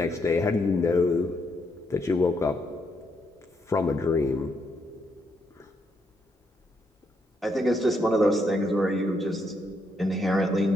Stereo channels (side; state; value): both; normal; correlation 0.77